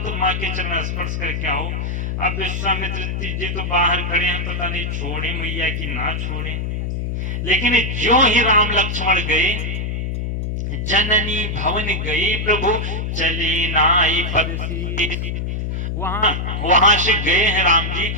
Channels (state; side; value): noise; left; hum, 2 dB below the sound